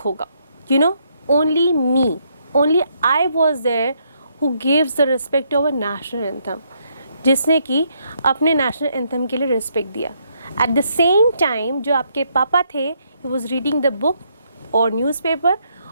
होगा. You know, only me, only I was there who gives the respect to our national anthem. जिसने कि अपने नेशनल एंथम के लिए रिस्पेक्ट दिया. एट द सेम टाइम जो आपके पापा थे, he was reading the book और न्यूज़पेपर,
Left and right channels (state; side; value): inverted; both; correlation -0.74